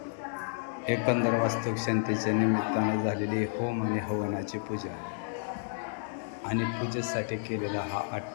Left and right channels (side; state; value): right; silent; 57 dB below the other